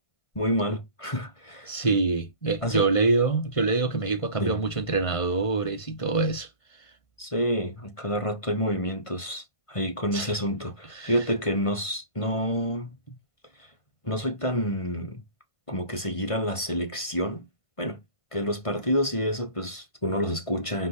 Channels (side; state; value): right; late; 1.5 ms